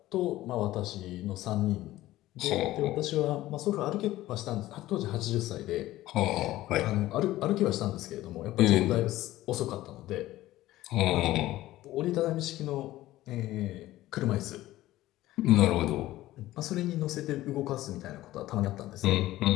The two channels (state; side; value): quieter; right; 15.8 dB